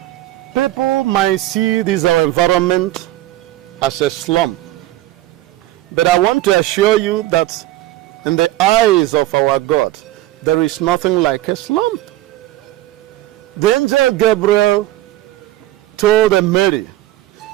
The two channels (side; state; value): left; quieter; 15.5 dB